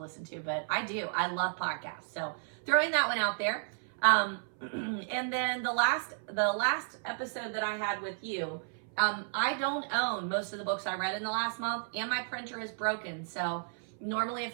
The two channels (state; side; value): silent; left; 56 dB below the other